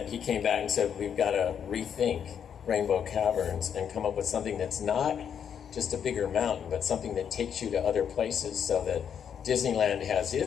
he came back and said, "We've got to rethink Rainbow Caverns and come up with something that's not just a bigger mountain, but something that takes you to other places, so that Disneyland has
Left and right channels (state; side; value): quieter; right; 8.1 dB